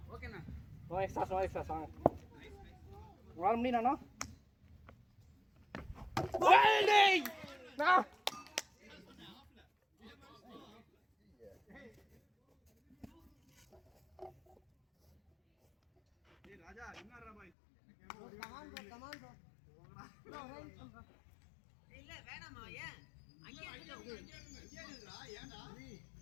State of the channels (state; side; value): drops out; right; at 17.5 s